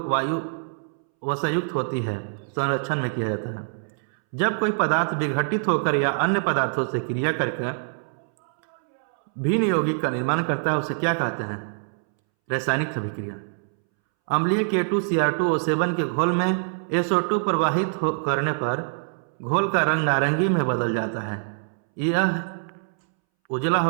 वायु वसायुक्त होती है संरक्षण में किया जाता है। जब कोई पदार्थ विघटित होकर या अन्य पदार्थों से क्रिया करके भिन्न यौगिक का निर्माण करता है उसे क्या कहते हैं? रासायनिक अभिक्रिया। अम्लीय K2Cr2O7 के घोल में SO2 प्रवाहित करने पर घोल का रंग नारंगी में बदल जाता है। यह उजला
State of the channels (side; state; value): left; silent; 62 dB below the other